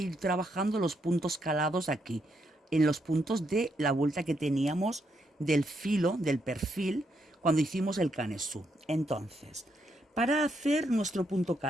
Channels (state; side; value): normal; both; correlation 0.78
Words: trabajando los puntos calados aquí, en los puntos de la vuelta que teníamos del filo, del perfil, cuando hicimos el canesú. Entonces, para hacer nuestro punto